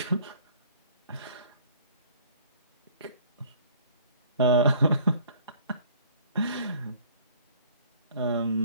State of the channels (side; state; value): both; inverted; correlation -0.54